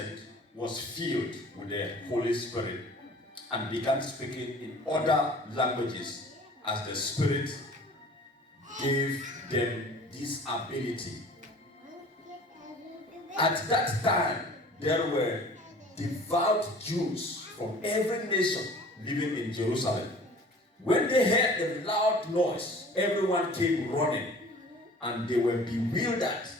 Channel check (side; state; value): both; normal; correlation 0.46